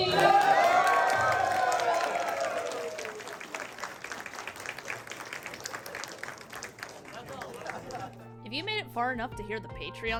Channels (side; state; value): both; identical; correlation 1.00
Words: If you made it far enough to hear the